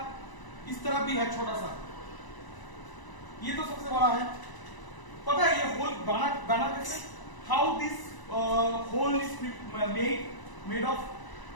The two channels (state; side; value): late; right; 1.0 ms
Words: इस तरफ भी है छोटा सा, ये तो सबसे बड़ा है। पता है ये होल बना कैसे, how this hole is made of,